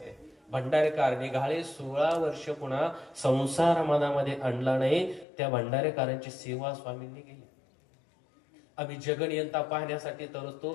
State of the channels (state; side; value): drops out; right; at 5.2 s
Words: आहे. भंडारेकर निघाले, 16 वर्ष पुन्हा संसार मनामध्ये आणला नाही. त्या भंडारेकरांची सेवा स्वामींनी केली. आम्ही जगनियंता पाहण्यासाठी